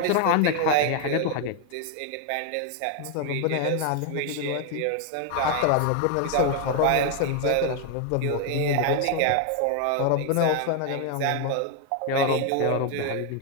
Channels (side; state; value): both; different; correlation 0.00